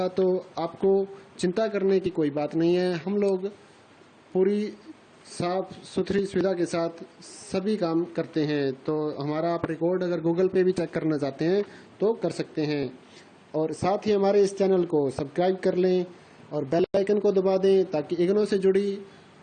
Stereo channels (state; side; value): identical; both; correlation 1.00